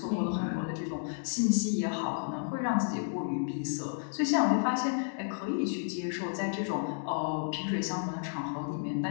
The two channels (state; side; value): silent; right; digital silence